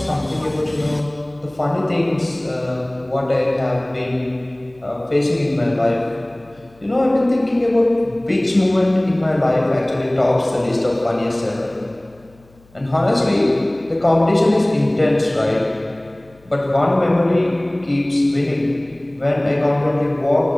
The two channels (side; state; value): left; noise; hum, 29 dB below the sound